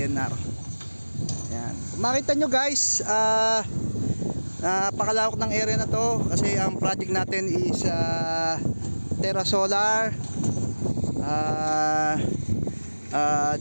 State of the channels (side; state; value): both; inverted; correlation -1.00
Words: Ayan, makita nyo guys, napakalawak ng area na to kasi ang project natin is Terra Solar,